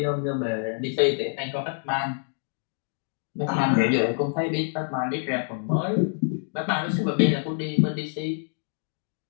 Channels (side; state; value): right; silent; digital silence